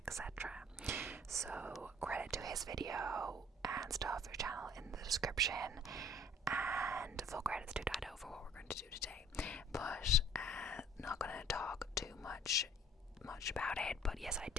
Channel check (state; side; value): normal; both; correlation 0.54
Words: etc. So credit to his video and stuff, your channel in the description, and full credits to Dido for what we're going to do today. But not going to talk too much about it. But yes, I